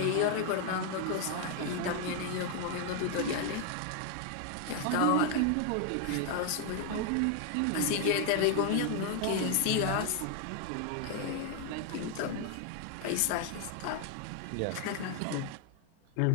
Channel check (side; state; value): both; different; correlation 0.00